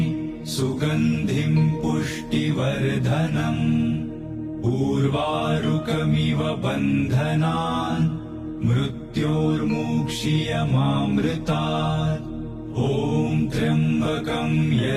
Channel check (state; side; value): identical; both; correlation 1.00